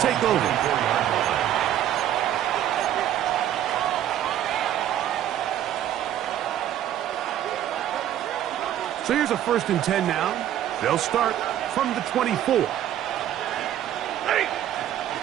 over. So here's a 1st and 10 now. They'll start from the 24.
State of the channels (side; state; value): left; quieter; 11.5 dB